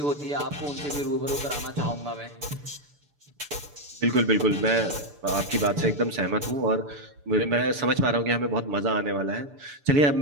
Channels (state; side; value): late; left; 6.9 ms